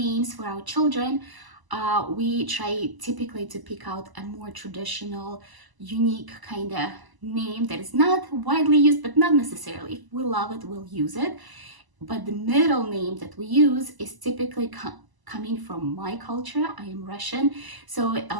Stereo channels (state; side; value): late; left; 1.0 ms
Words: for our children, we try typically to pick out a more traditional, unique kind of name that is not widely used, but not necessarily. If we love it, we'll use it. But the middle name that we use is typically coming from my culture. I am Russian, so